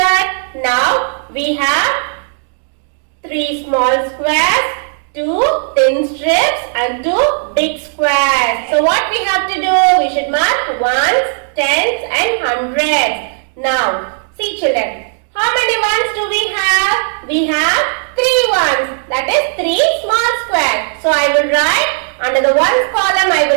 Now we have 3 small squares, 2 thin strips and 2 big squares. So what we have to do? We should mark ones, tens and hundreds. Now see children. How many ones do we have? We have 3 ones. That is 3 small squares. So I will write under the ones column I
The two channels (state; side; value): silent; left; digital silence